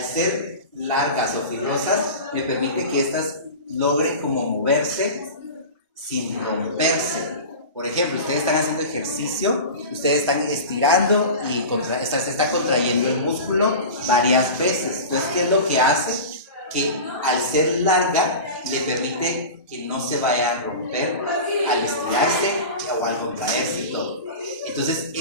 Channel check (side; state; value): both; inverted; correlation -0.31